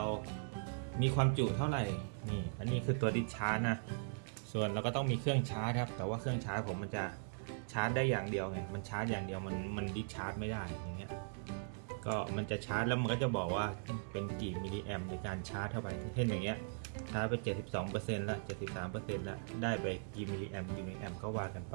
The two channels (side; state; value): left; silent; 52 dB below the other